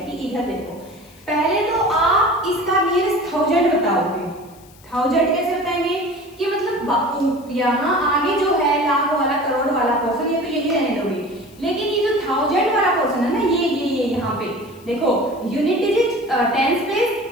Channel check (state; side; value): noise; left; hiss, 26 dB below the sound